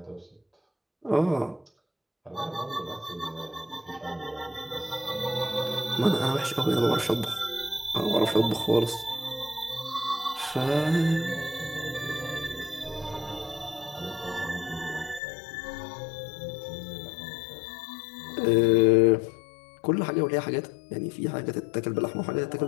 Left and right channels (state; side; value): drops out; right; at 15.2 s